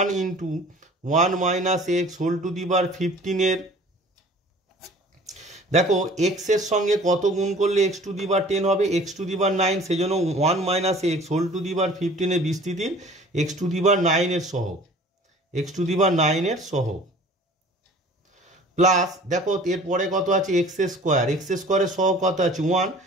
into 1 minus x whole to the power 15 এর, দেখো এক্স এর সঙ্গে কত গুণ করলে এক্স টু দি পাওয়ার 10 হবে, এক্স টু দি পাওয়ার 9, সেই জন্য 1 minus x whole to the power 15 এর বিস্তৃতির এক্স টু দি পাওয়ার 9 এর সহগ, এক্স টু দি পাওয়ার 9 এর সহগ, প্লাস দেখো এরপরে কত আছে এক্স স্কোয়ারের সহগ কত আছে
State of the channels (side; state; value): both; normal; correlation 0.48